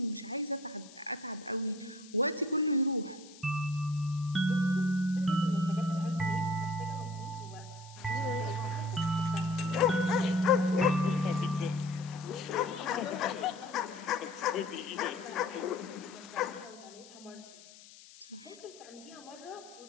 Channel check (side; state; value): left; noise; hiss, 20 dB below the sound